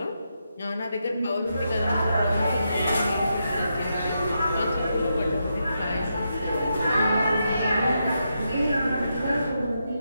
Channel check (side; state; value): both; inverted; correlation -0.83